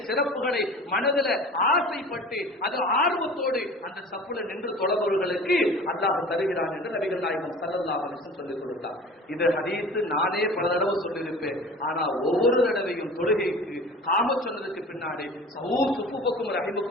சிறப்புகளை மனதில் ஆசைப்பட்டு அது ஆர்வத்தோடு அந்த சப்புல நின்று தொழபவர்களுக்கு அல்லாஹ் தருகிறான் என்று நபிகள் நாயகம் ஸல்லல்லாஹு அலைஹி வஸல்லம் சொல்லிக் கொடுத்தார். இது ஹதீஸ் நானே பல தடவை சொல்லியிருப்பேன். ஆனா ஒவ்வொரு தடவையும் தொழுகைக்கு காம சொன்னதுக்கு பின்னாடி சுஃபுக்கும்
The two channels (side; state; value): both; normal; correlation 0.40